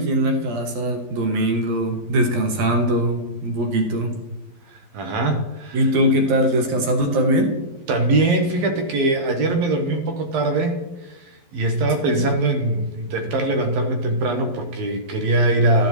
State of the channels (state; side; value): late; left; 12 ms